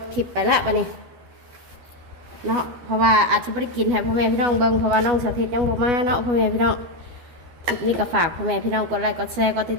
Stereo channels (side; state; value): left; late; 12 ms